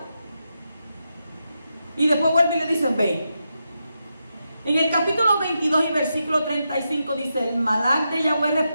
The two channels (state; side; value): inverted; both; correlation -0.86